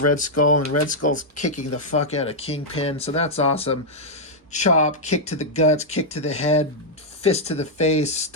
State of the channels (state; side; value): normal; both; correlation -0.04